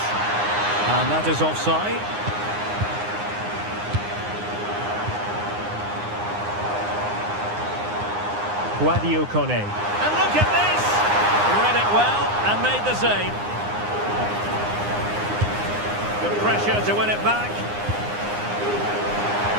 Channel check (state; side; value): late; left; 9.7 ms